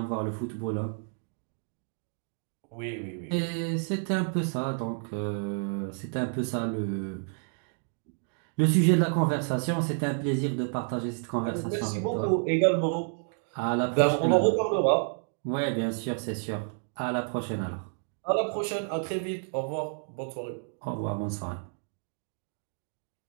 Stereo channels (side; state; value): left; silent; 58 dB below the other